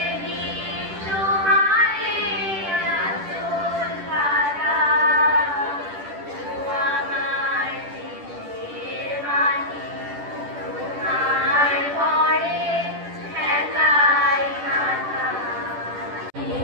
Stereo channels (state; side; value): late; left; 10 ms